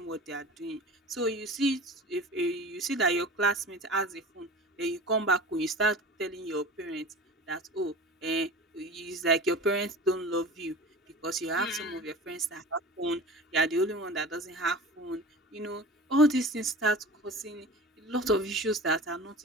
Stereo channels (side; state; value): both; normal; correlation 0.37